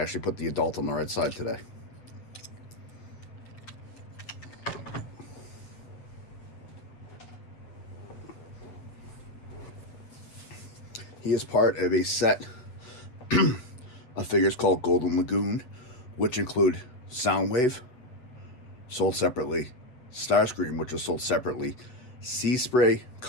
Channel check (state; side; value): late; right; 8.0 ms